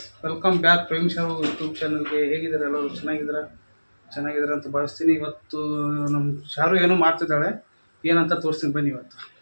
welcome back Prem show YouTube ಚಾನಲ್ಗೆ. ಹೇಗಿದ್ದಾರೆ ಎಲ್ಲರೂ? ಚೆನ್ನಾಗಿದ್ದಾರೆ ಅಂತ ಭಾವಿಸ್ತೀನಿ. ಇವತ್ತು ನಮ್ಮ ಶಾರು ಏನೋ ಮಾಡ್ತಿದ್ದಾಳೆ, ಏನಂತ ತೋರಿಸ್ತೀನಿ ಬನ್ನಿ. ಇವತ್ತು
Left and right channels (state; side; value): inverted; both; correlation -1.00